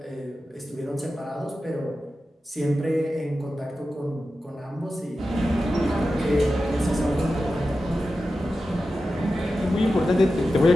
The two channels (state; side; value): normal; both; correlation 0.92